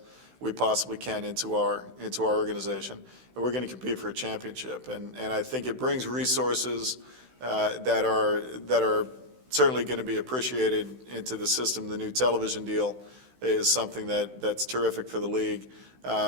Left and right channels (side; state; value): left; late; 16 ms